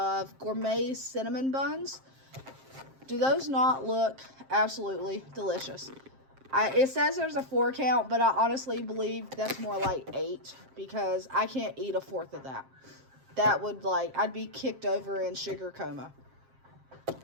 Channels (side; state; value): left; late; 7.5 ms